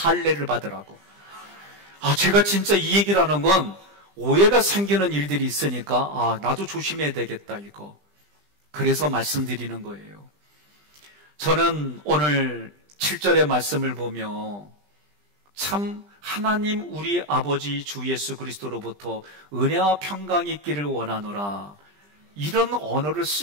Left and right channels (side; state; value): left; late; 20 ms